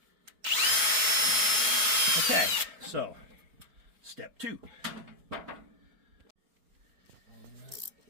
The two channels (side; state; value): left; late; 4.7 ms